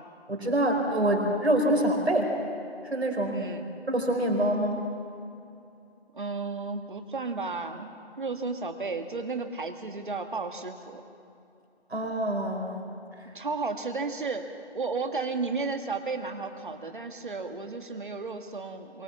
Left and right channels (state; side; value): normal; both; correlation 0.26